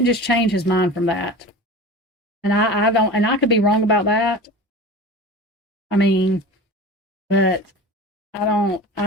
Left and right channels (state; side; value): normal; both; correlation 0.34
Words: just change his mind from that, and I don't, and I could be wrong about that. I mean, but I don't.